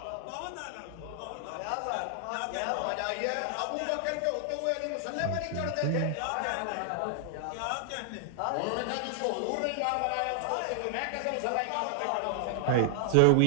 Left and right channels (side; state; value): both; different; correlation -0.01